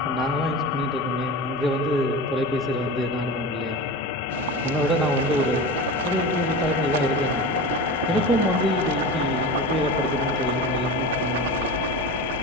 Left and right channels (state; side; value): normal; both; correlation 0.29